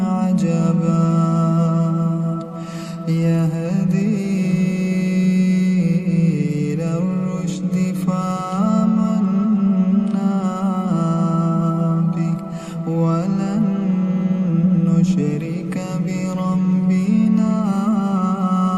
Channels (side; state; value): both; identical; correlation 1.00